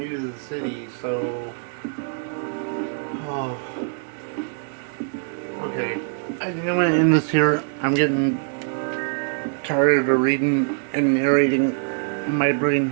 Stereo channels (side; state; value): left; silent; 62 dB below the other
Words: to the city, so... Oh. Okay. I think I'm going to end this here. I'm getting tired of reading and narrating. My brain